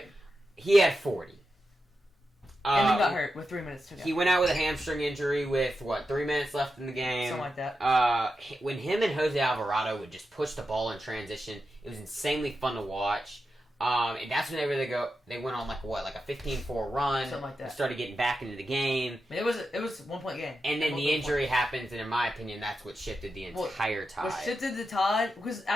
He had 40. And then got hurt with 3 minutes to go. He went out with a hamstring injury with, 3 minutes left in the game? Something like that. When him and Jose Alvarado would just push the ball in transition, it was insanely fun to watch. And that's when they went on like a 15-4 run. Something like that. Started getting back into the game. I mean, it was a 1-point game. And then the injury happens, and in my opinion, that's what shifted the entire tide. What shifted the tide, because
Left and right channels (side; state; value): both; normal; correlation 0.89